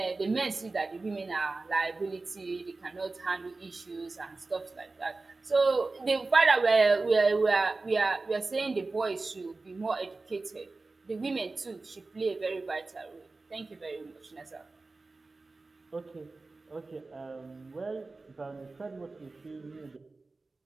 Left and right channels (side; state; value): left; quieter; 3.5 dB